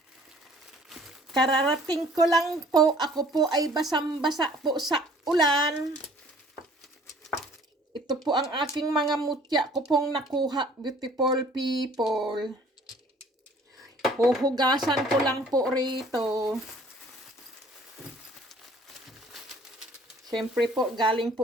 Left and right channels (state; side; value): normal; both; correlation 0.55